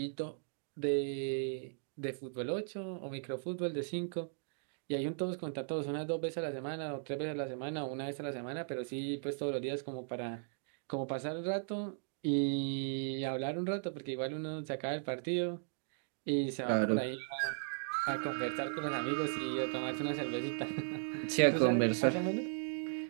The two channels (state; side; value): silent; left; digital silence